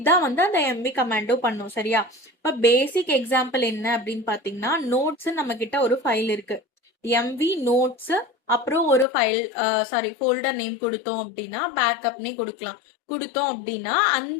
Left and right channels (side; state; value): right; drops out; at 9.1 s